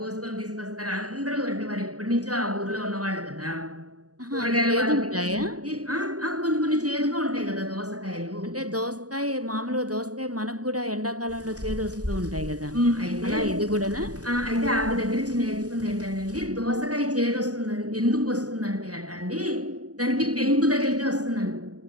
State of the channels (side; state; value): left; late; 0.67 ms